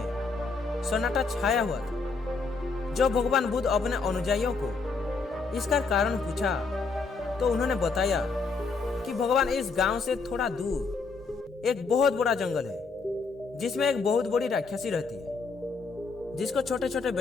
सन्नाटा छाया हुआ था। जब भगवान बुद्ध अपने अनुयायियों को इसका कारण पूछा तो उन्होंने बताया कि भगवान इस गांव से थोड़ा दूर एक बहुत बड़ा जंगल है जिसमें एक बहुत बड़ी राक्षसी रहती है जिसको छोटे छोटे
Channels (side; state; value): right; quieter; 4.3 dB